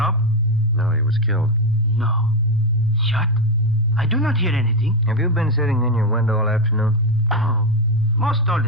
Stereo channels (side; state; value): both; normal; correlation 0.08